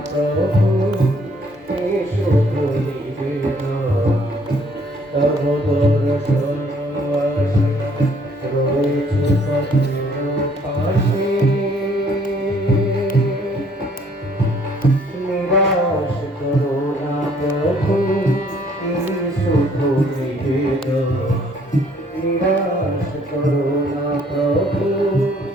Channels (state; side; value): normal; both; correlation 0.62